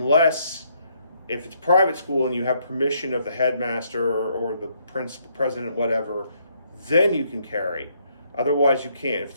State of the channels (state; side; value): inverted; both; correlation -0.71